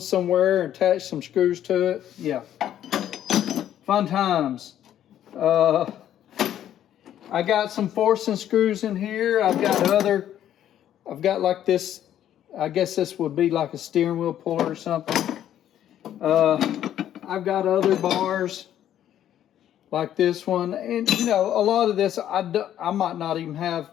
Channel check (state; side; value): quieter; right; 11.1 dB